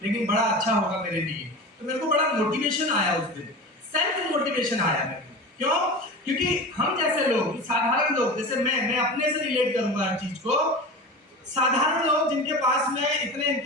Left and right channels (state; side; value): normal; both; correlation 0.31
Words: लेकिन बड़ा अच्छा होगा मेरे लिए। तो मेरे को बड़ा मोटिवेशन आया उस दिन, सेल्फ मोटिवेशन आया मेरे को। क्यों? क्योंकि हम जैसे लोग, साधारण लोग, जैसे मैं अपने से रिलेट करूंगा हर चीज को, साधारण लोग जिनके पास में इतने